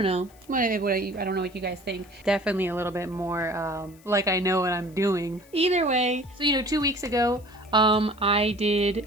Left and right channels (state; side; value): noise; left; hiss, 27 dB below the sound